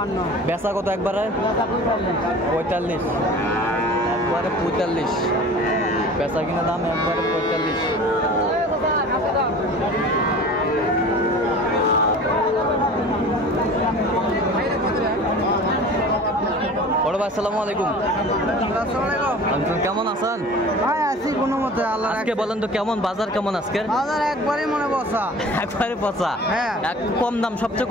বেচা কত একবারে? 45। একবারে 45। বেচা কিনা দাম একবারে 45। বড় ভাই আসসালামু আলাইকুম। কেমন আছেন ভাই? আছি কোনো মতে। আজকে বলেন তো কেমন বাজার, কেমন আজকের বাজার? একবারই মনে পচা। একবারে পচা? হ্যাঁ। কম দাম, সবচেয়ে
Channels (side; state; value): both; normal; correlation 0.41